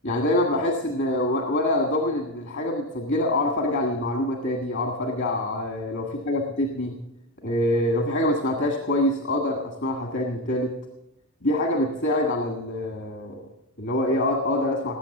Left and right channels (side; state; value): both; normal; correlation 0.13